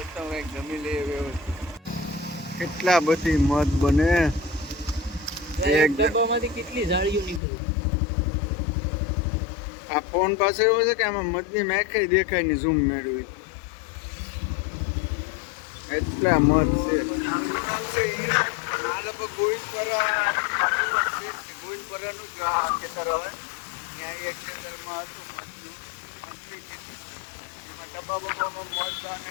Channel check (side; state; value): right; drops out; at 7.4 s